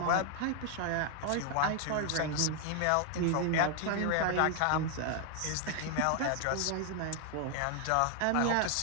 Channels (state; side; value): different; both; correlation 0.00